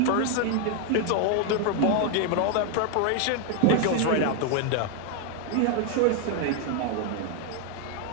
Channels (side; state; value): both; different; correlation 0.01